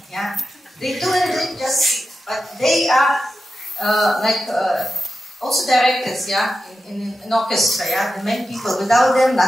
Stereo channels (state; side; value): normal; both; correlation 0.91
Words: yeah. They do it just, but they are also directors, yeah, in an orchestra, yeah, the main people. Without them,